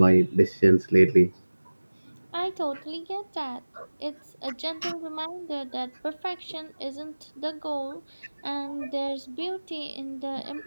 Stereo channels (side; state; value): both; inverted; correlation -1.00